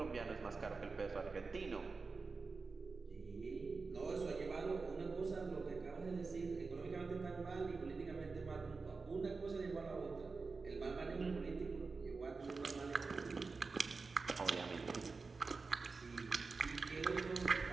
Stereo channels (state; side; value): quieter; left; 4.3 dB